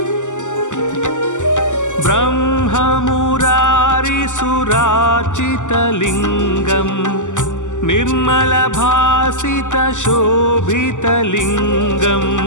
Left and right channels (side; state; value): right; late; 0.86 ms